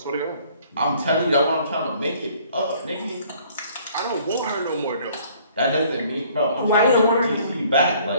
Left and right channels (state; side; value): inverted; both; correlation -0.58